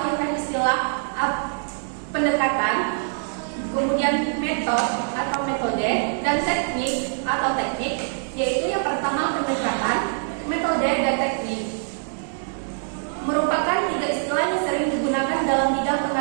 istilah pendekatan, kemudian metode dan teknik atau teknik, yaitu yang pertama pendekatan, metode, dan teknik. Merupakan 3 istilah yang sering digunakan dalam bidang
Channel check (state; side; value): silent; left; digital silence